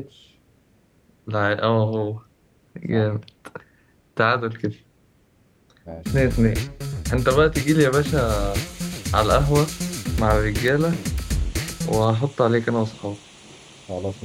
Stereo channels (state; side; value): identical; both; correlation 1.00